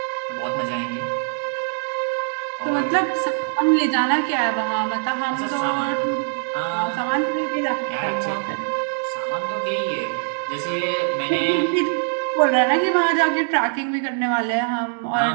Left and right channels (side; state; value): left; silent; 64 dB below the other